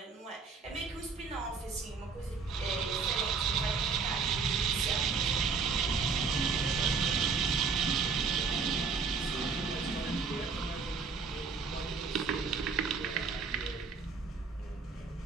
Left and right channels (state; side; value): quieter; left; 4.9 dB